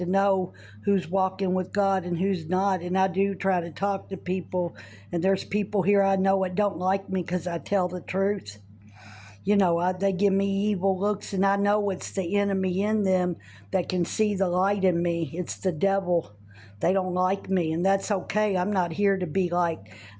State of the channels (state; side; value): identical; both; correlation 1.00